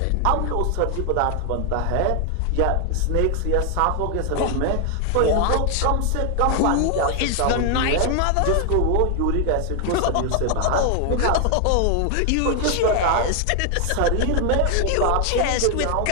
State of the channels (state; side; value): different; both; correlation 0.00